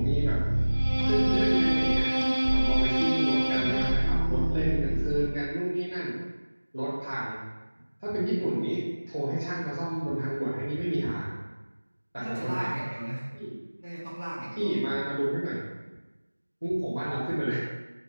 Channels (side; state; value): both; inverted; correlation -1.00